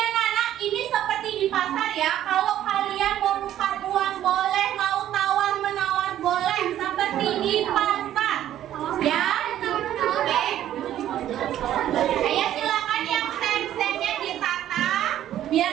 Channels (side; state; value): left; quieter; 12.0 dB